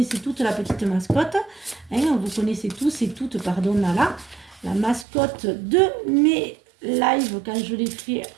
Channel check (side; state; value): left; drops out; at 5.1 s